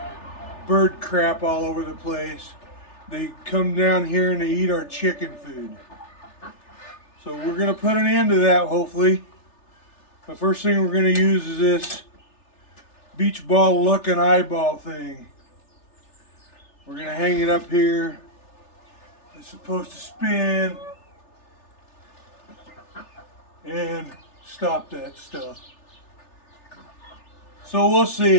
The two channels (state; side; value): late; right; 3.4 ms